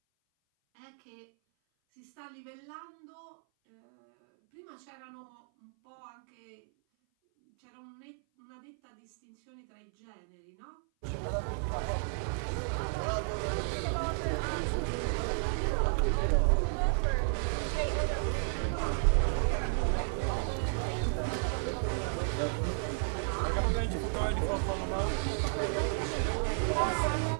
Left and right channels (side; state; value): left; silent; 56 dB below the other